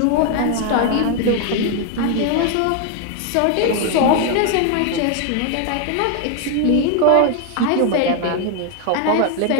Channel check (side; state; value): both; different; correlation 0.01